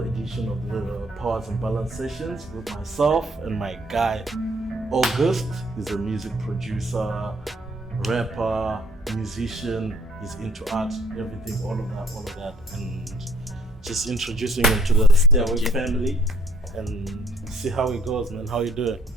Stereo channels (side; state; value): both; normal; correlation 0.61